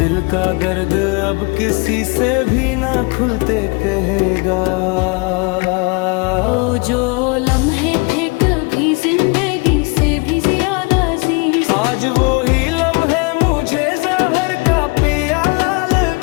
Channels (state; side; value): quieter; right; 29.7 dB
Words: का दर्द अब किसी से भी ना खुलते कहेगा। वो जो लम्हे थे कभी जिंदगी से भी ज्यादा अजीज, आज वो ही लम्हे मुझे जहर का प्याला